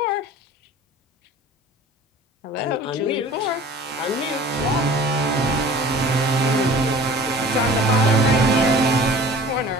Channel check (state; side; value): normal; both; correlation 0.44